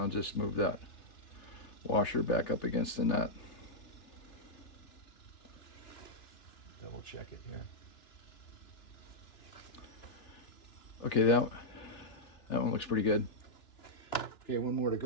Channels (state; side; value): late; right; 2.9 ms